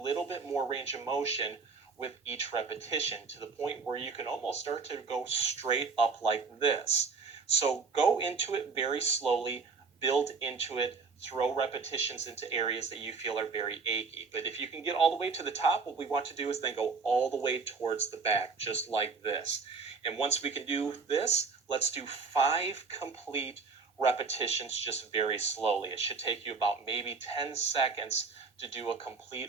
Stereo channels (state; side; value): quieter; left; 4.8 dB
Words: bit more range of motion with each repetition, to the point where you can almost start to go straight up like this. So go into it very slowly, build into it, throw repetitions into areas that you feel are very achy. But if you can get all the way to the top, what we want to do is then go all the way towards the back, just like this. And once we can do this, let's do 5 complete repetitions just very slowly. It should take you about maybe 10 seconds to do a